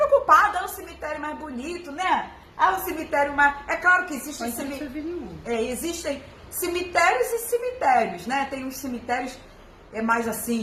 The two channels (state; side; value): identical; both; correlation 1.00